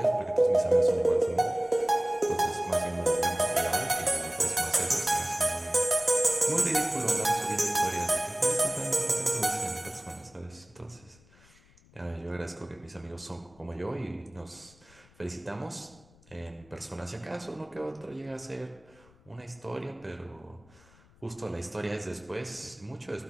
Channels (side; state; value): left; noise; rumble, 28 dB below the sound